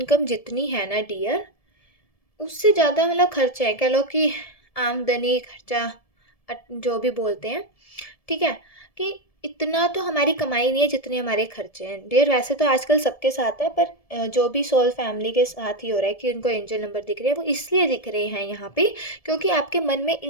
जितनी है ना डियर, उससे ज़्यादा मतलब खर्चे हैं, कह लो कि आमदनी खर्चा जो भी बोलते हैं, ठीक है, कि इतना तो हमारी कमाई नहीं है जितने हमारे खर्चे हैं डियर। वैसे तो आजकल सबके साथ है, पर जो भी सोल फैमिली के साथ ही हो रहा है कि उनको एंजल नंबर दिख रहे हैं, वो इसलिए दिख रहे हैं यहाँ पे क्योंकि आपके मन में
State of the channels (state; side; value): late; right; 1.7 ms